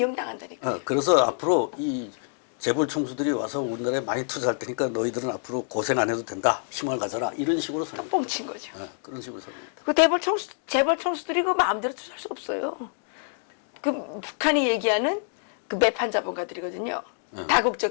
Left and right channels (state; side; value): silent; right; 58 dB below the other